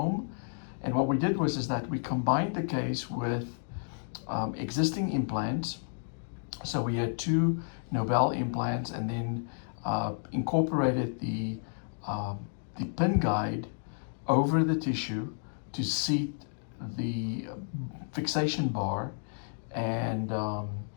And what we did is that we combined the case with existing implants. So we had two Nobel implants, and then incorporated the pin guide over the tissue to seat the fixation bar. And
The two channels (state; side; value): silent; right; digital silence